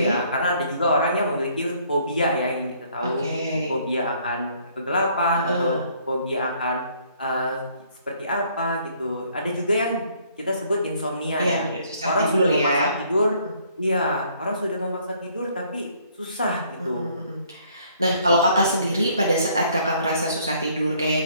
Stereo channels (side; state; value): both; inverted; correlation -0.63